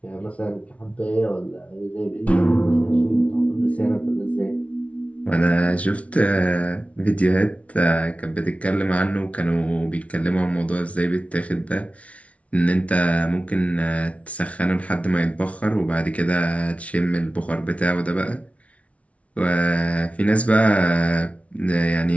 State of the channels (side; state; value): right; late; 0.064 ms